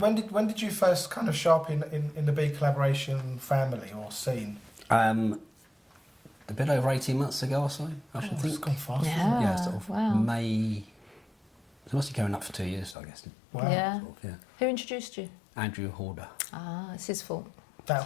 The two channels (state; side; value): drops out; right; at 13.0 s